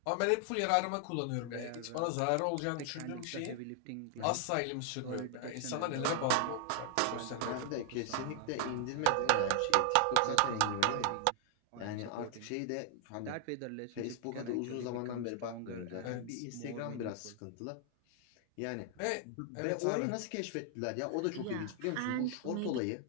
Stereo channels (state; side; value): different; both; correlation 0.00